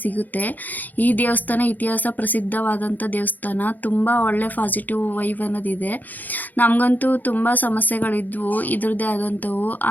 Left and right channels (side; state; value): right; late; 0.083 ms